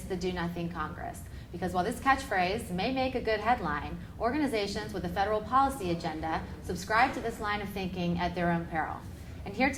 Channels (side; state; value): both; identical; correlation 1.00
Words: the Do Nothing Congress. Because while this catchphrase may make a good headline, organizations with a federal policy agenda subscribe to this line of thinking at their own peril. And here